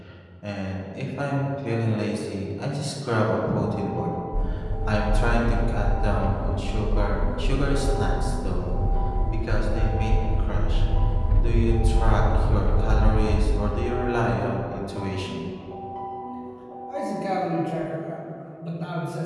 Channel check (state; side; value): identical; both; correlation 1.00